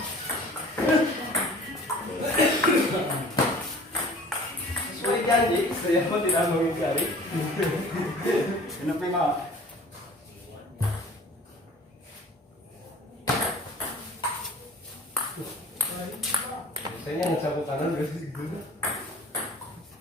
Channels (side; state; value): both; normal; correlation 0.47